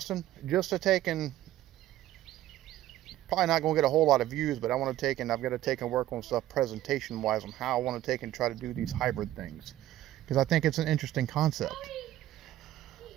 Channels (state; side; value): quieter; left; 14.0 dB